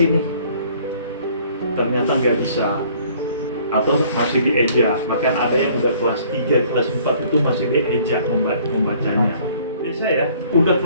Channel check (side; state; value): both; inverted; correlation -0.57